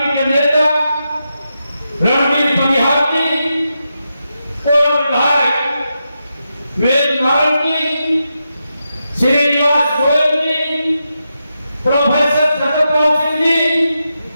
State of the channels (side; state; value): both; inverted; correlation -0.87